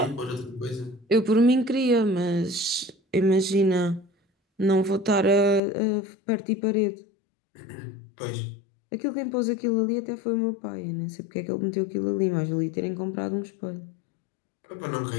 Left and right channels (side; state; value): right; drops out; at 5.6 s